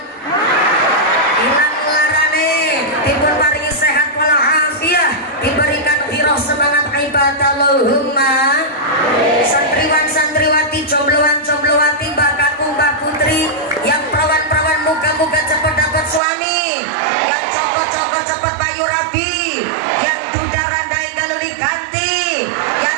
larane, dipun paringi sehat walafiat, diberikan hiroh semangat ibadah. Allahumma. Santriwan santriwati, jombloan jomblowati, mbak kakung mbak putri, yang perawan-perawan moga-moga cepat dapat suami, yang cokot-cokot cepat bayu rabi, yang duda randai galuli ganti,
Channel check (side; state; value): left; drops out; at 16.2 s